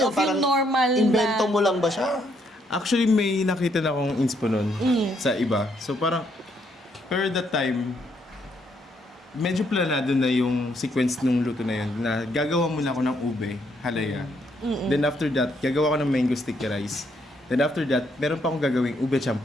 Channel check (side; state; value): both; normal; correlation 0.72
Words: yung normal invento na... mo lang ba siya? Actually, may nakita na akong inspo nun sa iba. So parang, per that time, medyo planado na yung sequence nung luto na yun. Na gagawa muna ako ng ube, halaya. Then after that, gagawa ko ng mango sticky rice. Then after that, meron pa akong gagawing ube